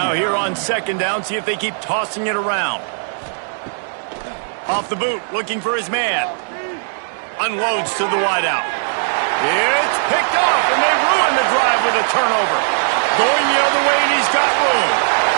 here on 2nd down, see if they keep tossing it around. Off the boot, looking for his man. Unloads to the wideout. It's picked off, and they ruin the drive with a turnover. Going the other way, and he's got room.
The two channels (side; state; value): left; silent; digital silence